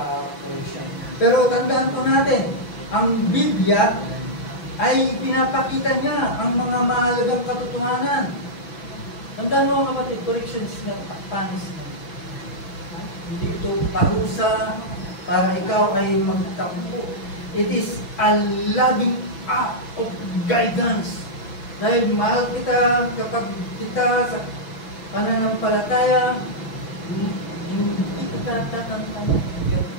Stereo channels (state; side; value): late; right; 6.1 ms